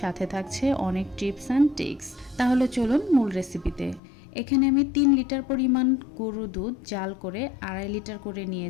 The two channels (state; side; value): drops out; right; at 4.0 s